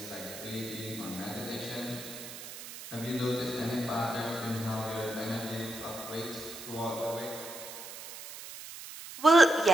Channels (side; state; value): right; noise; hiss, 12 dB below the sound